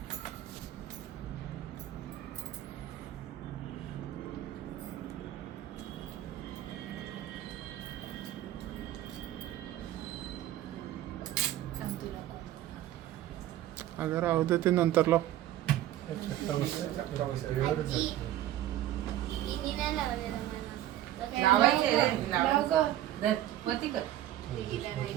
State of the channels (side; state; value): left; quieter; 13.3 dB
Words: अगर राहू दे ते नंतर लाव.